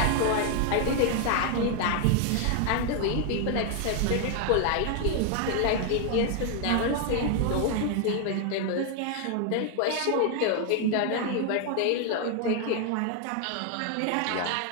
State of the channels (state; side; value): different; both; correlation 0.00